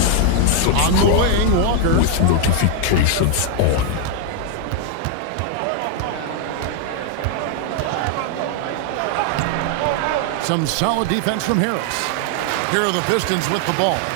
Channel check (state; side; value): different; both; correlation 0.00